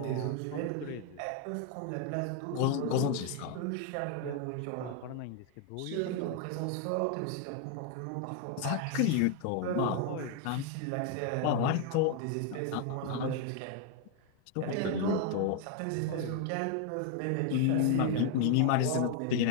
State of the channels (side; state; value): both; different; correlation 0.00